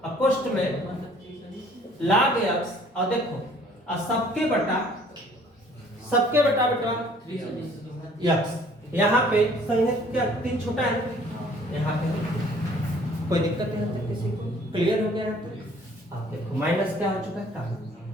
कोष्ट में log x, और देखो और सबके बटा बेटा x, यहाँ पे संयुक्त क्या 3 छोटा है, यहाँ पे कोई दिक्कत नहीं है किसी को, क्लियर हो गया है तो आप देखो माइनस क्या हो चुका है कॉमन,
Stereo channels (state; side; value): normal; both; correlation 0.56